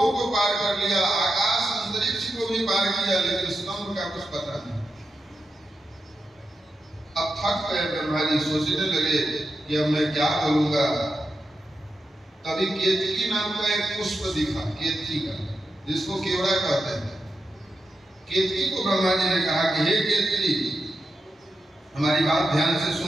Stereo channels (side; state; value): both; normal; correlation 0.88